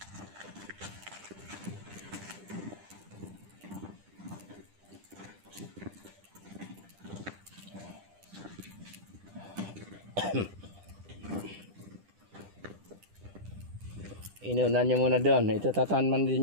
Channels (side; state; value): left; late; 10 ms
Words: Inunan nyo muna doon. Ito tatanman